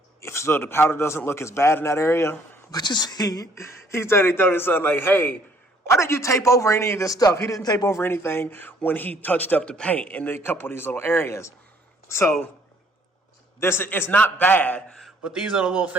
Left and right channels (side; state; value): both; normal; correlation 0.62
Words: if so the powder doesn't look as bad in that area. But you see, he told his son, like, hey, why did you tape over any of this stuff? He didn't tape over anything when he touched up the paint in a couple of these little areas. So it's not bad, but these are the little